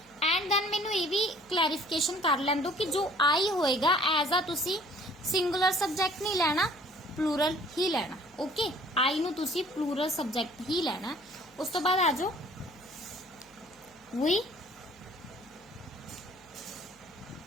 And then मैनू ये भी clarification कर लैन दो कि जो आई होएगा एज आ तुसी सिंगुलर सब्जेक्ट नहीं लेना, प्लूरल ही लेना। ओके, आई नू तुसी प्लूरल सब्जेक्ट ही लेना। उस तो बाद आ जाओ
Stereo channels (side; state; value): left; noise; hum, 30 dB below the sound